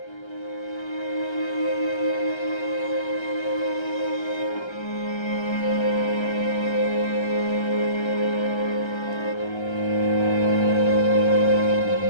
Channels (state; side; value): late; right; 1.3 ms